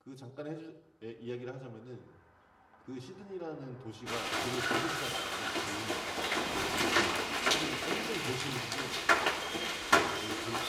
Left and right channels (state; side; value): identical; both; correlation 1.00